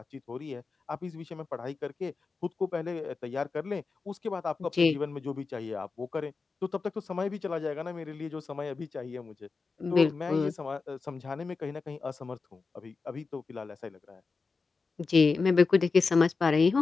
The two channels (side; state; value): right; quieter; 4.4 dB